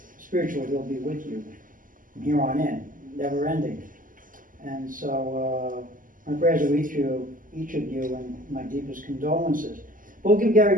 spiritually he'll be with you from here on in, never ending. And so my prayers are with you, each of you, and my deepest condolences. We'll give Gary a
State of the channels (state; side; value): late; left; 0.39 ms